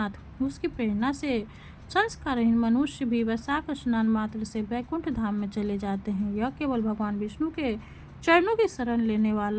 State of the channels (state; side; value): identical; both; correlation 1.00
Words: उसकी प्रेरणा से संस्कारहीन मनुष्य भी वैशाख स्नान मात्र से वैकुंठ धाम में चले जाते हैं। यह केवल भगवान विष्णु के चरणों की शरण लेने